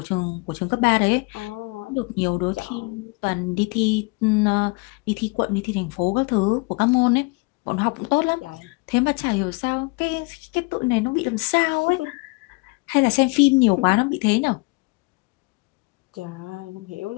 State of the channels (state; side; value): quieter; right; 28.5 dB